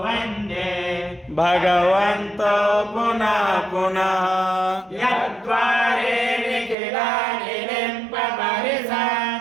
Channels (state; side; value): drops out; left; at 6.8 s